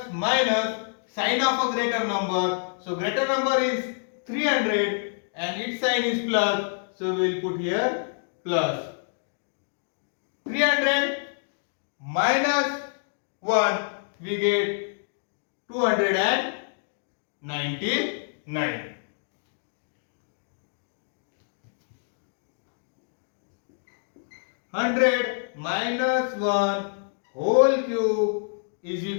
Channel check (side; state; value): right; silent; digital silence